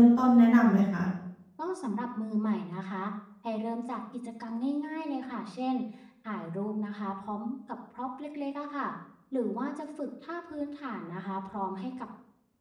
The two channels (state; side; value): identical; both; correlation 1.00